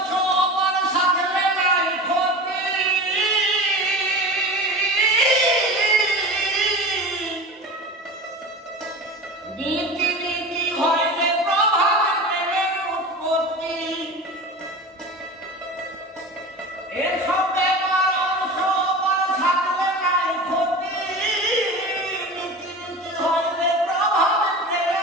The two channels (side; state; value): both; normal; correlation 0.31